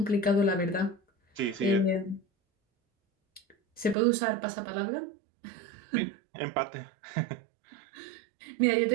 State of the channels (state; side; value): drops out; left; at 4.0 s